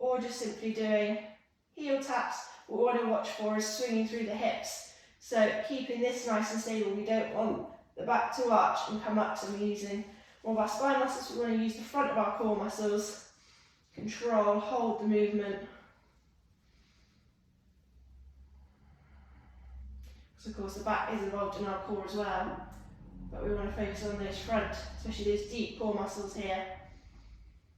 just simply doing heel taps. What we want to watch for is swinging through the hips. So keeping this nice and stable. We don't want the back to arch and come up, so we're using more of our spine muscles. We want to use the front of our core muscles. Control, hold the movement. Because of course the back is involved in our core as well, but we want to focus on those front, especially those deep core muscles here.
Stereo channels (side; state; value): both; identical; correlation 1.00